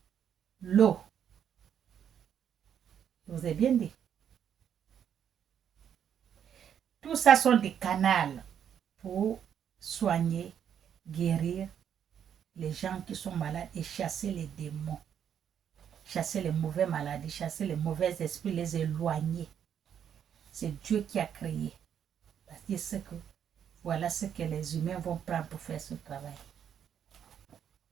l'eau. Je vous ai bien dit. Tout ça sont des canaux pour soigner, guérir les gens qui sont malades et chasser les démons. Chasser les mauvaises maladies, chasser les mauvais esprits, les éloigner. C'est Dieu qui a créé. Parce qu'il sait que voilà ce que les humains vont prendre pour faire ce travail.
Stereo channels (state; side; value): quieter; left; 8.8 dB